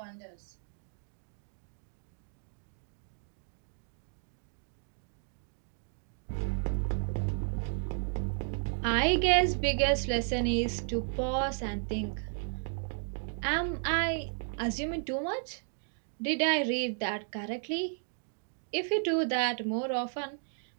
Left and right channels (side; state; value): left; silent; 55 dB below the other